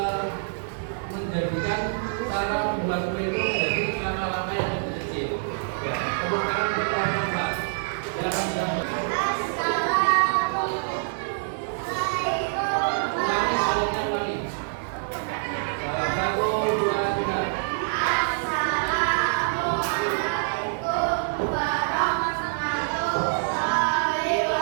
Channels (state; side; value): silent; left; digital silence